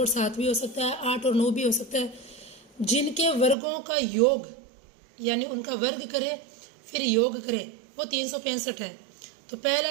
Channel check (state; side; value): drops out; left; at 3.6 s